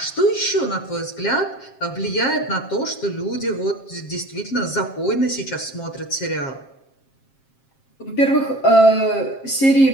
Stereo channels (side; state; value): right; late; 7.5 ms